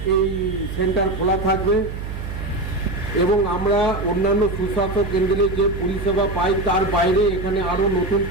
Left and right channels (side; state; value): right; noise; hum, 7 dB below the sound